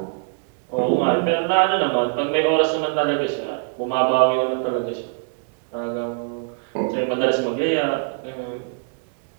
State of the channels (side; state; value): left; silent; digital silence